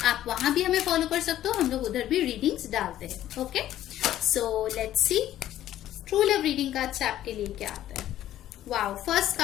आप वहां भी हमें फॉलो कर सकते हो, हम लोग उधर भी रीडिंग्स डालते हैं। Okay, so let's C true love reading card से आपके लिए क्या आता है। वाओ, फर्स्ट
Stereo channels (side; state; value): right; quieter; 12.7 dB